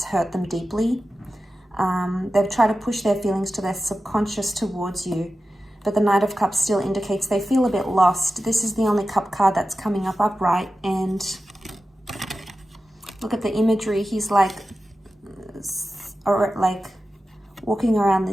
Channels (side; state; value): both; normal; correlation 0.93